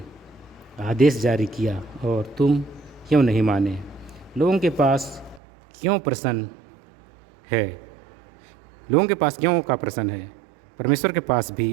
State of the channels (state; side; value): drops out; left; at 5.4 s